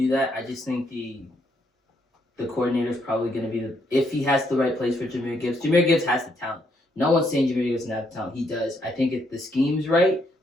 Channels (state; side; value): normal; both; correlation 0.74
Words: that. I just think the coordinator's probably going to be if he has the right place for Jahmyr Gibbs. Jahmyr Gibbs has the talent. No one's saying Jahmyr Gibbs doesn't have the talent. He does. I think if the scheme's right,